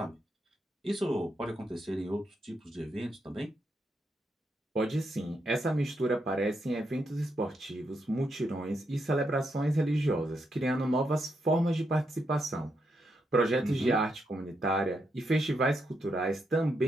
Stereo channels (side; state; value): both; normal; correlation 0.81